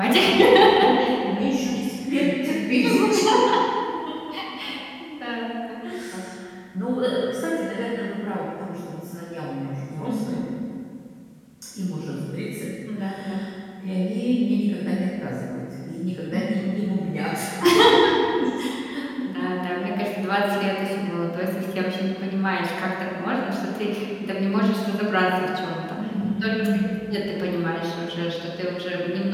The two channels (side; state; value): both; identical; correlation 1.00